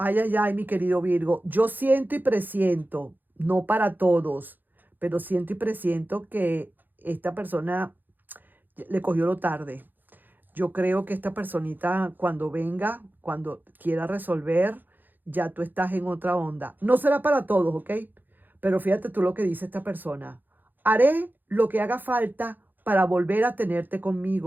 Ay, ay, ay, mi querido Virgo. Yo siento y presiento, no para todos, pero siento y presiento que esta persona le cogió lo tarde. Yo creo que esta personita cuando venga, cuando quiera resolver, ya tú estás en otra onda. No será para todos, ¿ok? Pero fíjate tú lo que dice esta persona. Haré lo que haga falta para volver a tenerte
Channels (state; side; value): late; left; 0.088 ms